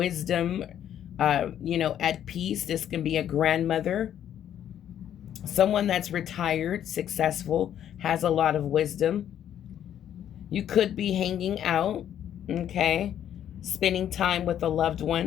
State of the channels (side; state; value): right; quieter; 10.3 dB